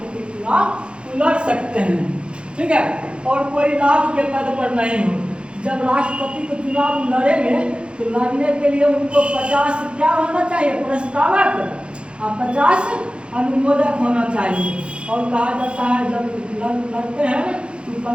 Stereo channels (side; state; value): left; late; 0.056 ms